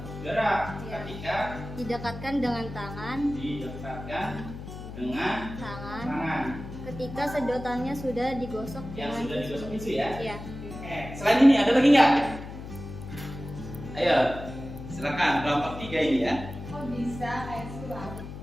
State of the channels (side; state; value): left; noise; hum, 11 dB below the sound